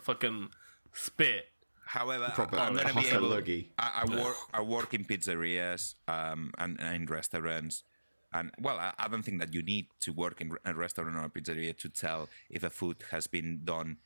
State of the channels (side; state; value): both; inverted; correlation -1.00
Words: fucking spit. However, Proper I'm gonna be hot able. luggy. I work in pizzerias and in restaurants, and well, I don't think that you need to work in a restaurant or a pizzeria to tell if a food has been done